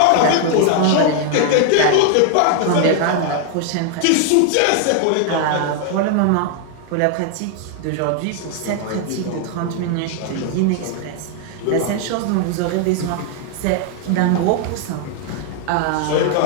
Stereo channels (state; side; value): different; both; correlation 0.00